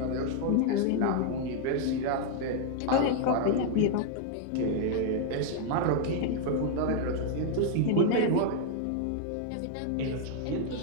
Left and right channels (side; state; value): both; different; correlation 0.00